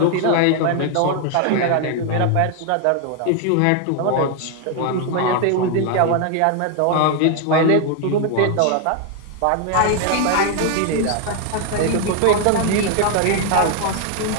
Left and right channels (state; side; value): different; both; correlation 0.01